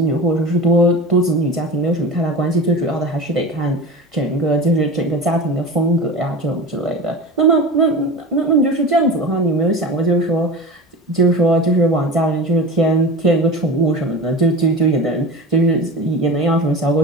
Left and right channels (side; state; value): both; normal; correlation 0.31